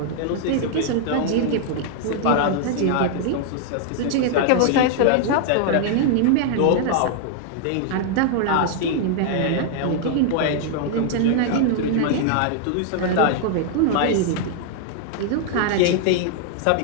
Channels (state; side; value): different; both; correlation 0.00